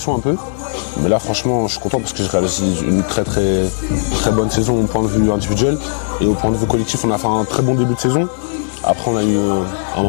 un peu. Mais là franchement je suis content parce que j'ai réalisé une très bonne saison au point de vue individuel. Et au point de vue collectif, on a fait un très bon début de saison. Après on a eu un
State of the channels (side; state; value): right; silent; digital silence